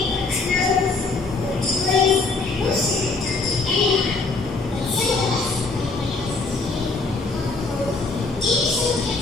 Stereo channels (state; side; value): quieter; right; 3.8 dB